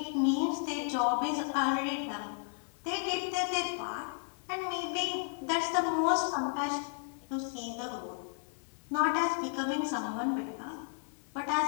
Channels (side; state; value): right; silent; 55 dB below the other